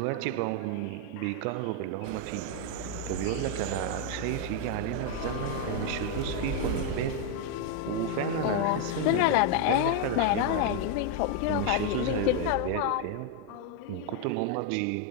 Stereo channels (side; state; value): both; different; correlation 0.01